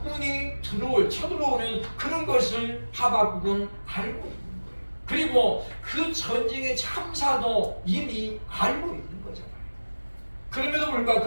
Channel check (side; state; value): both; inverted; correlation -1.00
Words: 쳐들어오는 그런 것을 하박국은 알고 있는 거예요. 그리고 그 전쟁의 참사도 이미 알고 있는 거잖아요. 그럼에도 불구하고